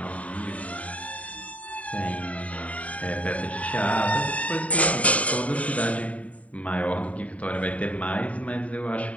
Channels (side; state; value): right; late; 0.068 ms